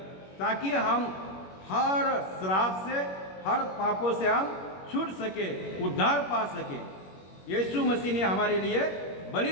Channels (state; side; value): late; right; 21 ms